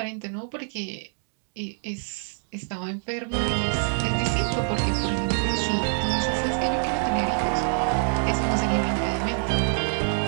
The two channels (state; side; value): silent; left; 60 dB below the other